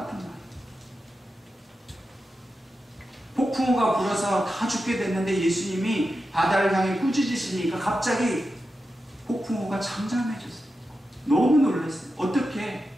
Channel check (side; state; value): both; normal; correlation 0.90